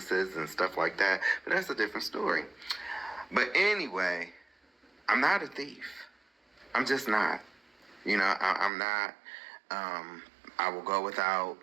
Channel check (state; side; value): drops out; left; at 8.7 s